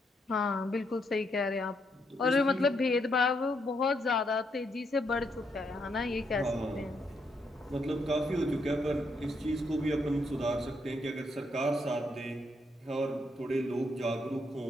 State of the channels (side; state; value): both; normal; correlation 0.77